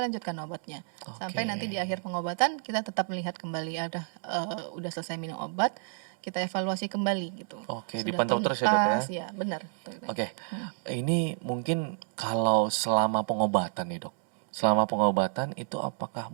obatnya sampai nanti di akhir pengobatan kita tetap melihat kembali udah selesai minum obat, kita evaluasi kembali gitu. Oke, Sudah dipantau terus ya dok ya? tuntas, ya benar. Oke, ini mungkin kalau selama pengobatan nih dok, selama pengobatan itu apakah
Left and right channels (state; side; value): silent; left; digital silence